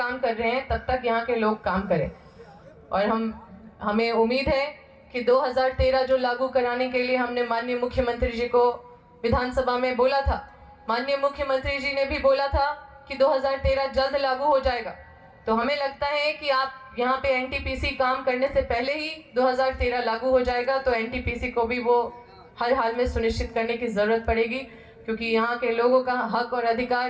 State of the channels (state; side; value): identical; both; correlation 1.00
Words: कर रहे हैं तब तक यहाँ के लोग काम करें। और हमें उम्मीद है कि 2013 जो लागू कराने के लिए हमने माननीय मुख्यमंत्री जी को विधानसभा में बोला था, माननीय मुख्यमंत्री जी ने भी बोला था कि 2013 जल्द लागू हो जाएगा। तो हमें लगता है कि आप यहाँ पे एनटीपीसी काम करने से पहले ही 2013 लागू हो जाएगा, तो एनटीपीसी को भी वो हर हाल में सुनिश्चित करने की ज़रूरत पड़ेगी, क्योंकि यहाँ के लोगों का हक और